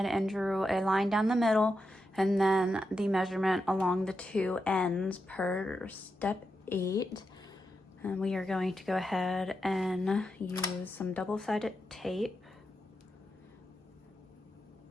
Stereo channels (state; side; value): normal; both; correlation 0.87